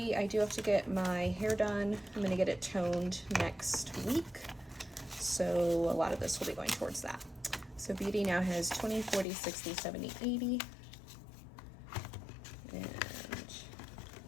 I do have to get my hair done. I'm going to get it toned next week. So a lot of this will be going towards that. So beauty now has 20, 40, 60, 70, 80. And that's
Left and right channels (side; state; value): right; drops out; at 9.2 s